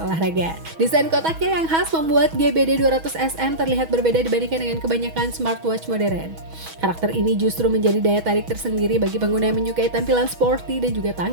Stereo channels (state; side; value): late; left; 6.2 ms